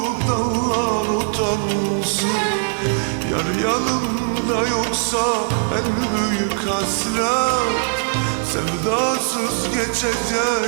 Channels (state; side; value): silent; left; digital silence